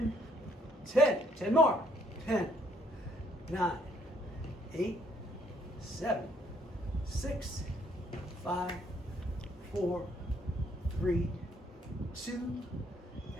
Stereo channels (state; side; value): normal; both; correlation 0.67